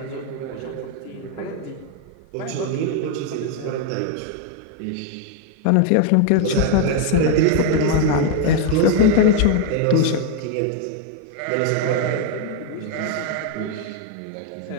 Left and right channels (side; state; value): both; different; correlation 0.01